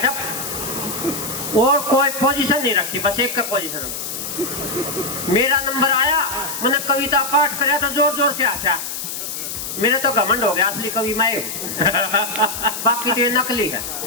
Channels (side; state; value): left; noise; hiss, 6 dB below the sound